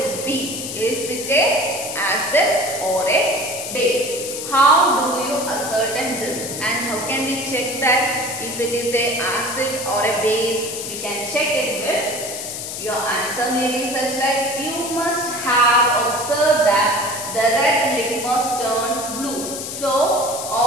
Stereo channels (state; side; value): noise; left; hiss, 6 dB below the sound